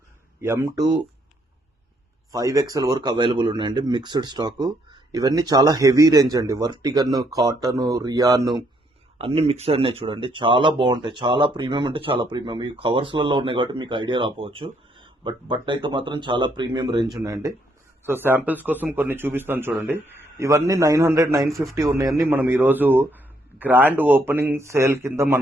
M2 5XL వరకు అవైలబుల్ ఉన్నాయండి. Mixed stock. ఇవన్నీ చాలా హెవీ రేంజ్ అండి. వర్టిగన్, కాటన్, రియాన్ అన్ని మిక్స్ ఉన్నాయి చూడండి. చాలా బాగుంటాయి. చాలా ప్రీమియం అంటే చాలా ప్రీమియం. ఈ కవర్స్లలో ఉన్నాయి కాబట్టి మీకు ఐడియా రాకపోవచ్చు. బట్ అయితే మాత్రం చాలా ప్రీమియం రేంజ్ ఉన్నాయండి. సో శాంపిల్స్ కోసం కొన్ని చూపిస్తాను చూడండి. ఇవన్నీ 900, 950 ఉన్నాయని మనం ఈరోజు గ్రాండ్ ఓపెనింగ్ సేల్ కింద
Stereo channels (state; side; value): normal; both; correlation 0.71